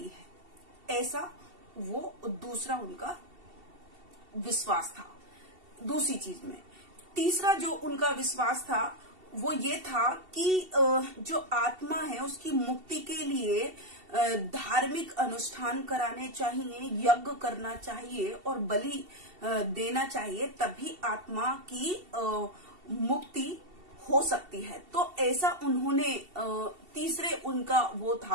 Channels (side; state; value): left; late; 2.7 ms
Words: है, ऐसा वो दूसरा उनका विश्वास था। दूसरी चीज में तीसरा जो उनका विश्वास था वो ये था कि जो आत्मा है उसकी मुक्ति के लिए धार्मिक अनुष्ठान कराने चाहिए, यज्ञ करना चाहिए और बलि देना चाहिए, तभी आत्मा की मुक्ति हो सकती है। तो ऐसा उन्होंने तीसरे उनका वो